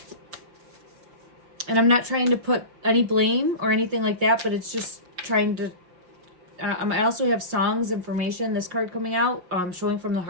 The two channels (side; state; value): left; late; 5.6 ms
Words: And I'm not trying to put any blame or anything like that, but it's just trying to... I also have songs information, this card coming out, showing from the